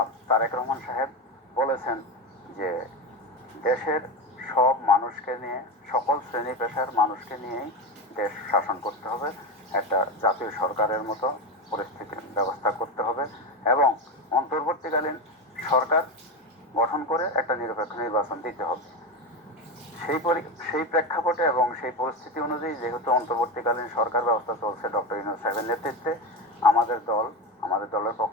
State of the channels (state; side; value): normal; both; correlation 0.17